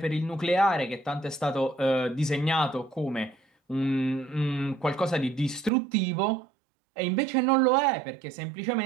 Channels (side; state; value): left; drops out; at 5.7 s